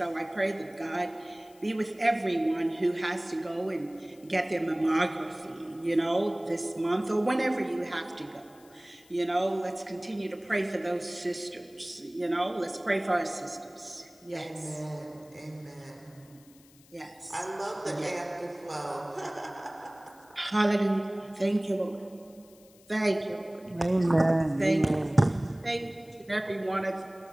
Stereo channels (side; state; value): left; noise; hiss, 27 dB below the sound